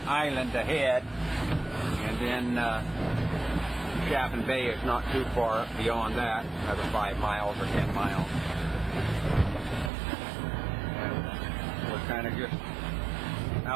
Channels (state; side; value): drops out; left; at 9.9 s